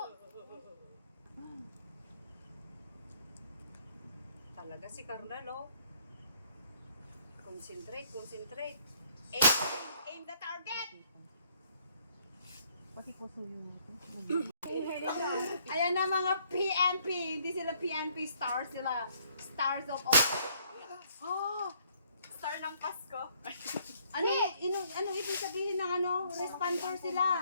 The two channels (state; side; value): inverted; both; correlation -0.66